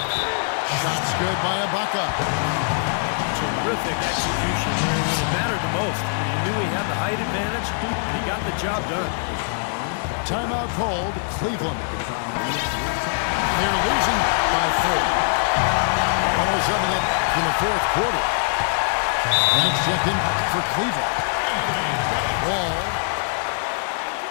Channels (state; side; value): silent; right; digital silence